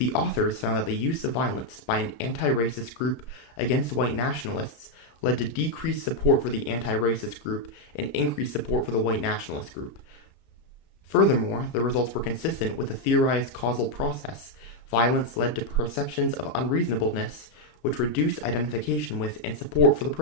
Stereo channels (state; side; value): late; right; 33 ms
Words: authors found that the use of violence by an anti-racist group against white nationalists led to decreased support for the anti-racist group and increased support for the white nationalist group. Furthermore, the results were consistent with the theorized causal process. Violence led to perceptions of unreasonableness, which reduced identification with and support for the